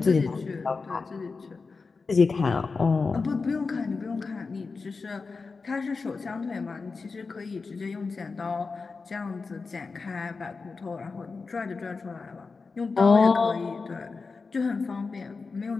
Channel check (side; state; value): right; quieter; 4.4 dB